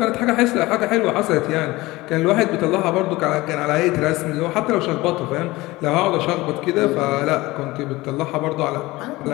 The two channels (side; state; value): right; quieter; 20.0 dB